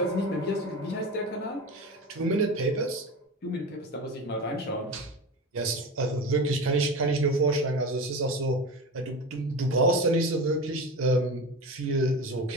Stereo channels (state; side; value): normal; both; correlation 0.27